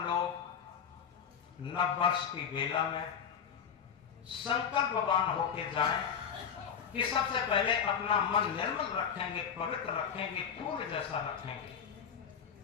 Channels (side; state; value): right; quieter; 7.4 dB